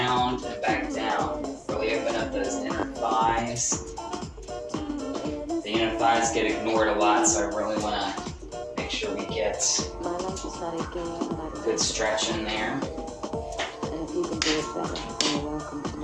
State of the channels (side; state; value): both; identical; correlation 1.00